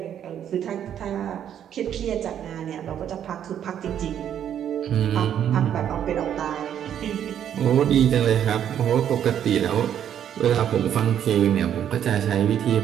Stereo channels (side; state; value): left; quieter; 9.7 dB